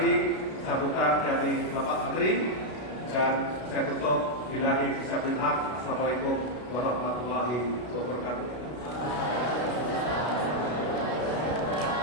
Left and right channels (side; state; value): right; late; 33 ms